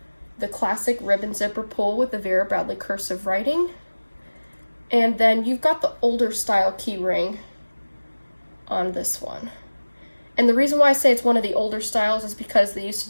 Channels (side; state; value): both; inverted; correlation -1.00